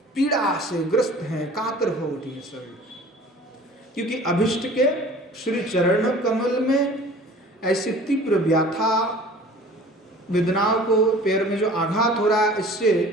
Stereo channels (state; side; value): normal; both; correlation 0.46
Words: पीड़ा से ग्रस्त हैं, कातर हो उठी है सभी, क्योंकि अभिष्ट के श्री चरण कमल में ऐसी तीव्र व्यथा वेदनाओं को पैर में जो आघात हो रहा है, इससे